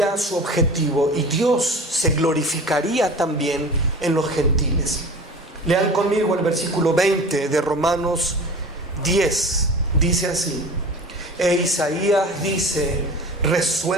su objetivo, y Dios se glorificaría también en los gentiles. Lean conmigo el versículo 20 de Romanos 10. Dice así: e Isaías dice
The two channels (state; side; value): normal; both; correlation 0.37